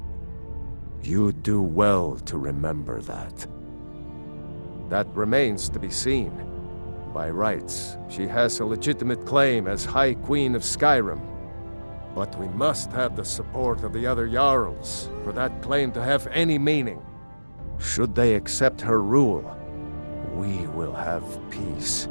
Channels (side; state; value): both; inverted; correlation -1.00